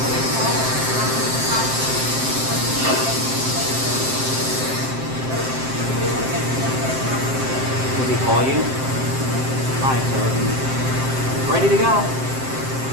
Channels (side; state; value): left; late; 7.7 ms